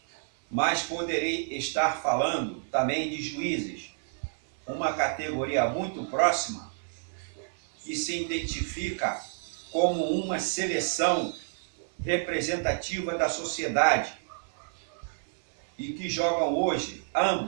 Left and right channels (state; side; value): silent; left; 58 dB below the other